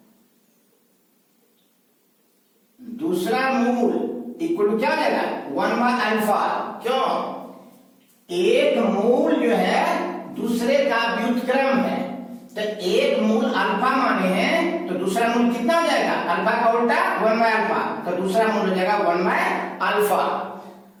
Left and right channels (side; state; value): both; identical; correlation 1.00